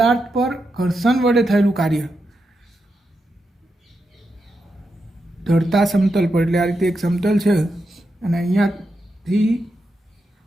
પર ઘર્ષણ વડે થયેલું કાર્ય। ઢળતા સમતલ પર એટલે આ રીતે એક સમતલ છે અને અહીંયાથી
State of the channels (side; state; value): both; normal; correlation 0.86